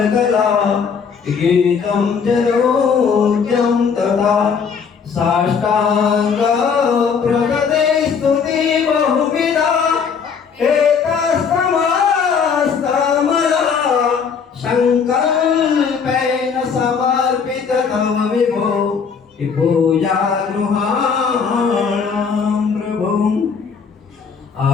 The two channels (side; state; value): right; quieter; 6.2 dB